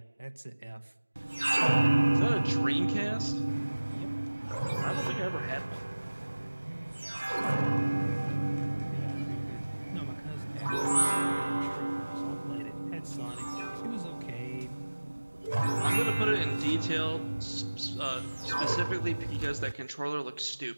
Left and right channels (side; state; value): both; inverted; correlation -1.00